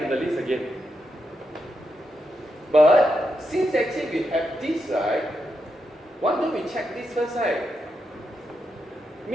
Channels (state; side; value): normal; both; correlation 0.84